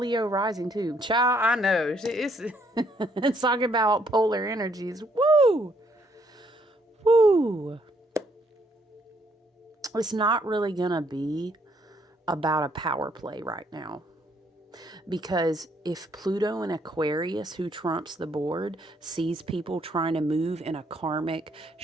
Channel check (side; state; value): both; normal; correlation 0.69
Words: rising too. Child, I know. It's, it's talking about polar energies. Woo! Woo! It's not really going to be about a power play right now. Because if Pluto in Aquarius, who trumps the board, sees people trying to move in a karmic,